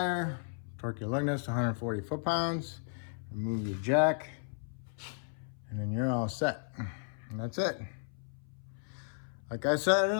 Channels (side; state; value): right; silent; 55 dB below the other